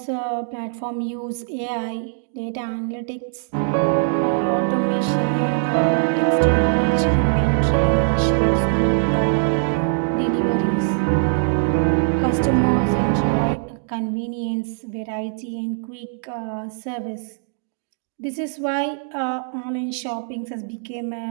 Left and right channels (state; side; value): silent; left; digital silence